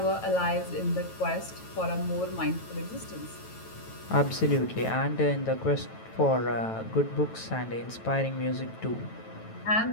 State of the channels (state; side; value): late; right; 9.1 ms